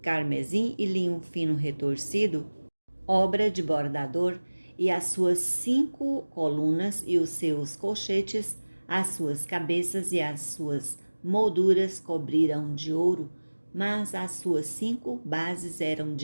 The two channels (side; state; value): both; inverted; correlation -1.00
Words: carmesim e linho fino retorcido, obra de bordador, e as suas 5 colunas e os seus colchetes, as suas cabeças e as suas molduras cobriram de ouro, mas as suas 5 bases eram